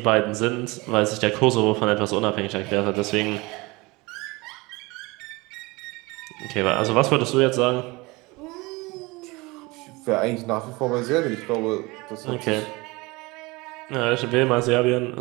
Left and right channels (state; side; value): quieter; left; 23.8 dB